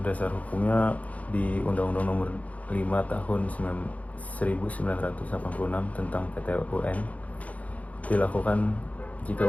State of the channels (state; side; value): late; right; 0.070 ms